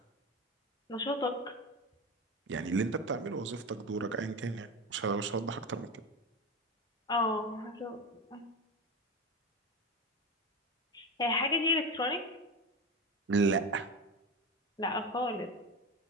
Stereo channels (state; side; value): normal; both; correlation 0.21